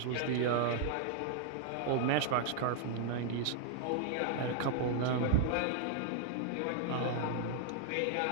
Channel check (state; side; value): different; both; correlation 0.00